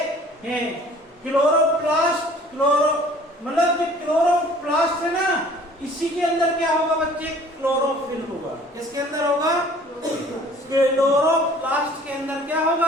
हैं। क्लोरोप्लास्ट मतलब जो क्लोरोप्लास्ट है ना, इसी के अंदर क्या होगा बच्चे? क्लोरोफिल होगा। किसके अंदर होगा? क्लोरोप्लास्ट के अंदर क्या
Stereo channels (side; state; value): both; normal; correlation 0.51